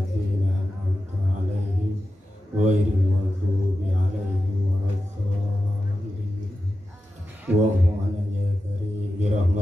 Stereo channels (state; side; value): normal; both; correlation 0.92